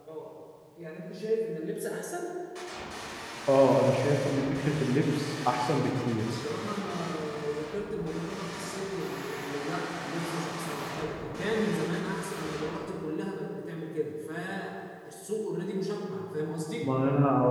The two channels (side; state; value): both; identical; correlation 1.00